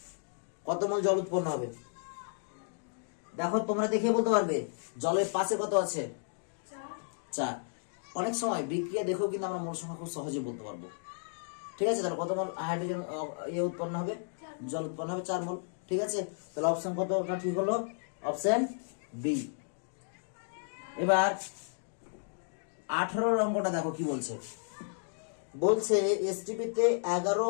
কত মোল জল উৎপন্ন হবে। দেখো তোমরা দেখে বলতে পারবে জলের পাশে কত আছে 4, অনেক সময় বিক্রিয়া দেখেও কিন্তু আমরা মোল সংখ্যা খুব সহজে বলতে পারবো। ঠিক আছে, তাহলে কত মোল হাইড্রোজেন উৎপন্ন হবে, জল উৎপন্ন হবে 4 মোল। ঠিক আছে, তাহলে অপশন কতটা ঠিক হলো? Option B. এবার 18 অঙ্কটা দেখো কি বলছে। বলছে এসটিপিতে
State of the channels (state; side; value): silent; right; digital silence